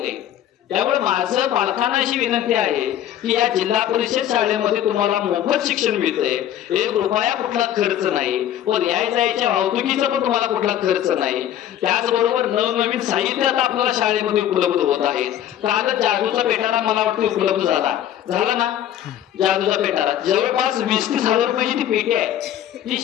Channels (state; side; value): quieter; right; 11.3 dB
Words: आहे. त्यामुळे माझं पालकांना अशी विनंती आहे की या जिल्हा परिषद शाळेमध्ये तुम्हाला मोफत शिक्षण मिळतंय, 1 रुपया कुठला खर्च नाही, व यायच्या वाहतुकीचा पण तुम्हाला कुठला खर्च नाही. त्याचबरोबर नवनवीन साहित्य आता आपल्याला शाळेमध्ये उपलब्ध होत आहेत. काल जादूचा पेटारा मला वाटतं उपलब्ध झाला ना. जादूचा पेटारा जवळपास 20-30 हजार रुपयाची ती पेटी आहे, जी